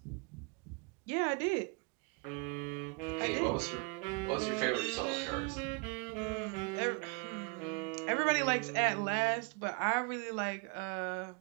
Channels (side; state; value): left; quieter; 32.0 dB